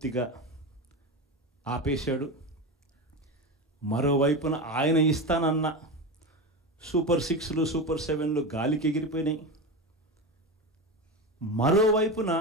ఆపేశాడు, మరోవైపున ఆయన ఇస్తానన్న సూపర్ 6లు సూపర్ 7లు గాలికి ఎగిరిపోయినాయి. మరోవైపున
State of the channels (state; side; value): normal; both; correlation 0.20